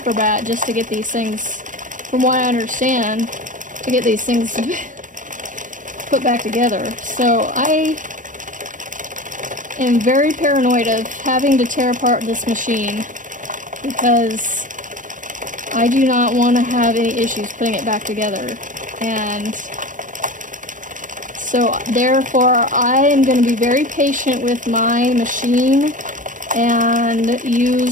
just to get these things, from what I understand, to get these things put back together. So I am very paranoid of having to tear apart this machine, because I do not want to have any issues putting it back together. And so therefore I am going to be very patient with my machine and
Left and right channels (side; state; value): left; late; 0.38 ms